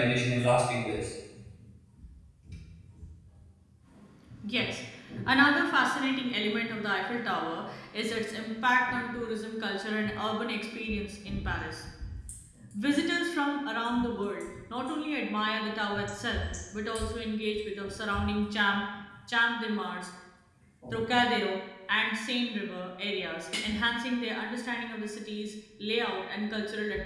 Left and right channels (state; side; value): identical; both; correlation 1.00